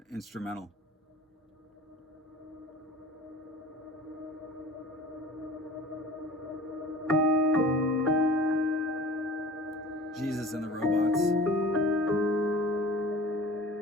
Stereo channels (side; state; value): both; normal; correlation 0.42